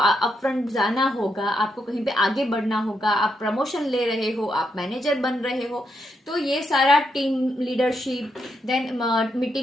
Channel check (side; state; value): both; normal; correlation 0.81